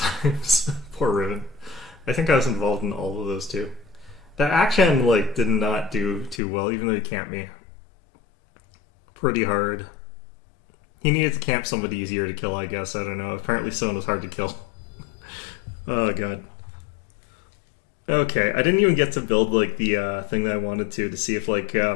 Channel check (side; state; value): right; drops out; at 6.4 s